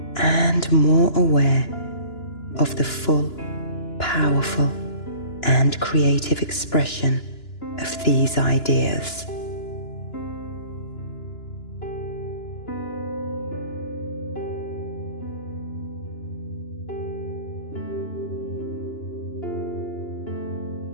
and more aware of the full, powerful and creative expression of these ideas.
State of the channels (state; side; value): late; right; 2.9 ms